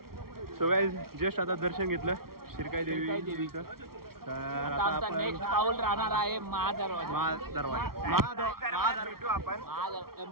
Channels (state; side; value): late; left; 0.94 ms